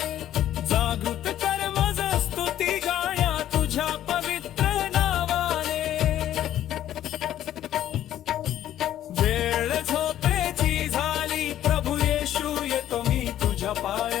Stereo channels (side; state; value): right; quieter; 12.0 dB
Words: जागृत कर मज स्तुती गाण्या तुझ्या पवित्र नावाने. वेळ झोपेची झाली प्रभू येशू येतो मी तुझ्या